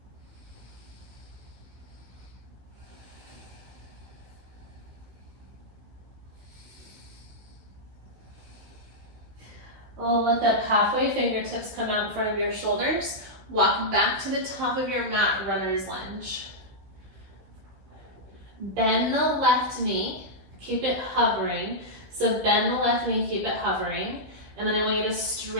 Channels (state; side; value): late; left; 16 ms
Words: Look up halfway, fingertips come out in front of your shoulders. Walk back to the top of your mat, runner's lunge. Bend the left knee, keep it hovering. So bend the left knee, keep it hovering. And then I want you to